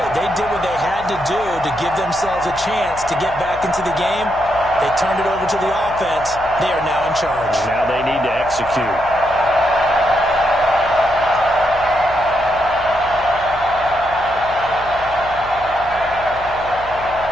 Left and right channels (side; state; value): left; noise; hum, 17 dB below the sound